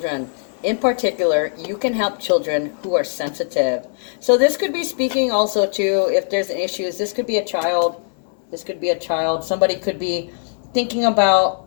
in particular, you can help children who are sensitive. So this could be speaking also to if there's issues. This could be a child. This could be a child. Somebody could be thinking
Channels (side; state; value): right; silent; digital silence